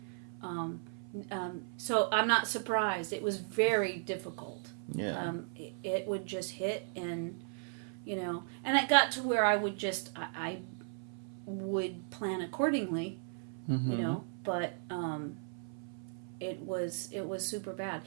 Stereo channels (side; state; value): left; silent; 54 dB below the other